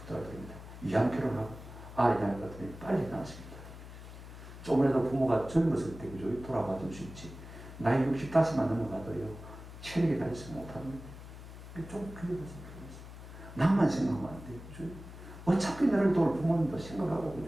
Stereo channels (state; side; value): noise; left; hum, 14 dB below the sound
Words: 이왕 결혼하고 아이 낳을 것 같으면 빨리 낳으십니다. 조금이라도 부모가 젊었을 때 그죠? 돌아봐 줄 수 있지. 나이 65만 넘어가도요, 체력이 다해서 못합니다. 좀 그게 무슨 필요했어. 나만 생각하면 안 돼요. 그죠? 어차피 나를 도울 부모님도 생각하고,